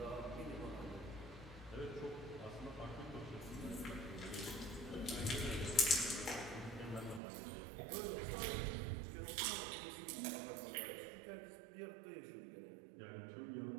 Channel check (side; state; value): left; drops out; at 7.2 s